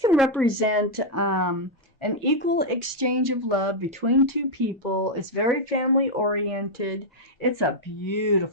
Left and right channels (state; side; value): normal; both; correlation -0.02